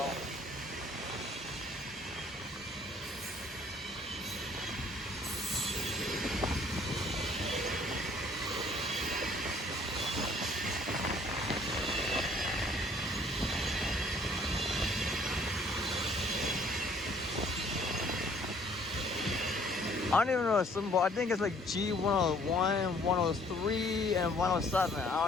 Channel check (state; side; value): normal; both; correlation 0.59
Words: I don't even know the symbol. I think it's like G101, 103, and 107. I